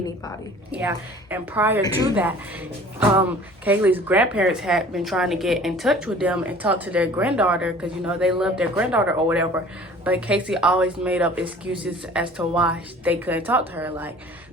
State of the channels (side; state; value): both; normal; correlation 0.48